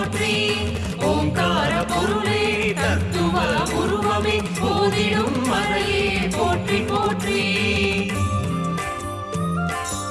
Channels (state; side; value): identical; both; correlation 1.00